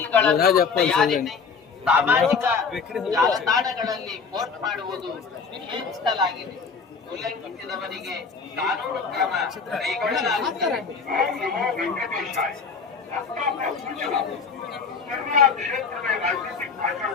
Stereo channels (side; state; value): right; quieter; 5.3 dB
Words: ಸಾಮಾಜಿಕ ಜಾಲತಾಣಗಳಲ್ಲಿ ಪೋಸ್ಟ್ ಮಾಡುವುದು ನಿಷೇಧಿಸಲಾಗಿದೆ. ಉಲ್ಲಂಘಿಸಿದವರಿಗೆ ಕಾನೂನು ಕ್ರಮ ಕೈಗೊಳ್ಳಲಾಗುತ್ತದೆ.